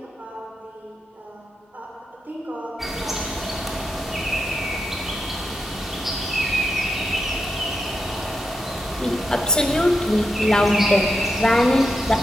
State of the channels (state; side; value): normal; both; correlation 0.85